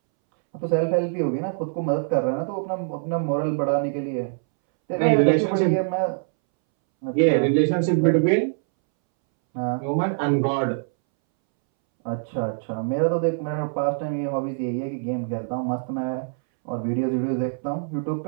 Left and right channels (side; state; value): left; silent; 63 dB below the other